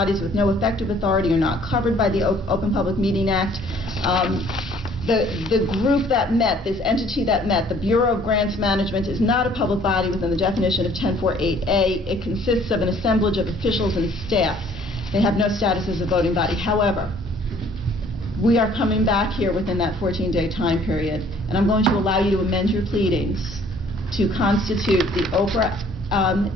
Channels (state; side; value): normal; both; correlation 0.57